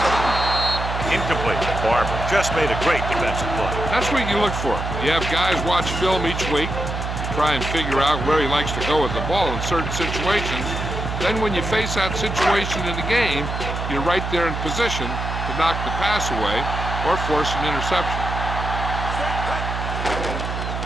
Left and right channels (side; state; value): right; noise; hum, 4 dB below the sound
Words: Incomplete. Barber just made a great defensive play. That's what you look for. You have guys watch film each week. You try and figure out where he likes to go with the ball in certain situations. Then when you face that situation in the game, you're right there in position to knock the pass away or force an interception.